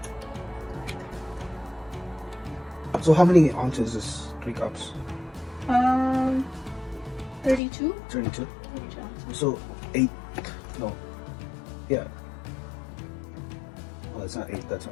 So how many ounces is 3 cups? 32? 32. 32 ounces. So 8. No. Yeah. Well, it's not 8. That's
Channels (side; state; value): right; drops out; at 7.6 s